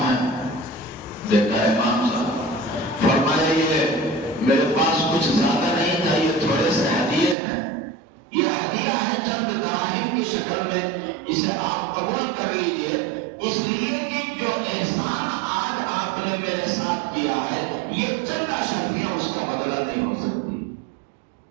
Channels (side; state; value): left; drops out; at 7.4 s